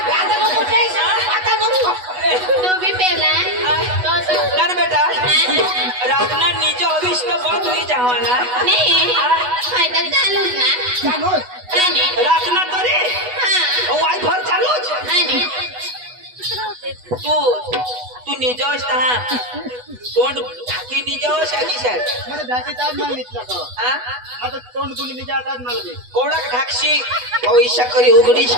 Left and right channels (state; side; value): late; left; 8.1 ms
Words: तो भी पेला तो ना बेटा रातना नीचे हवीस तो बहुत हुई जावाना नाही फायदा चालूच ना चालूच आणि रातना तरी हा वायफर चालूच आणि तू निजोस ता तोंड ढाकी निजोस आकी सर मला ढाकी ताज माल निघला का हां आता तोंड गुली निघा ताज माल दे कोडक ढाकशी पैसा करी उघडीच